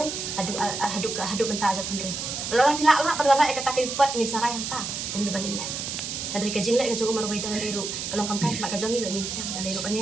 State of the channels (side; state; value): right; noise; hiss, 4 dB below the sound